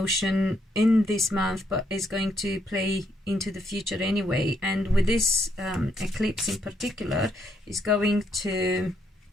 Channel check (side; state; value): both; normal; correlation 0.75